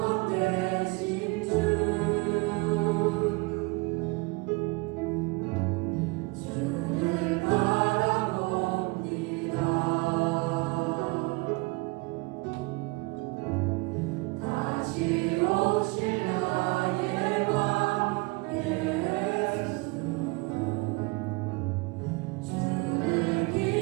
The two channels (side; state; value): left; quieter; 26.4 dB